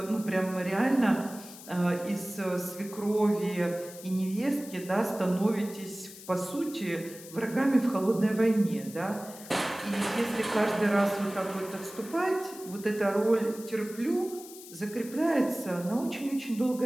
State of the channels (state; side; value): noise; left; hiss, 16 dB below the sound